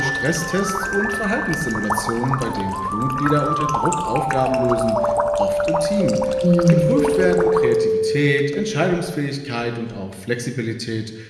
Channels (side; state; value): both; identical; correlation 1.00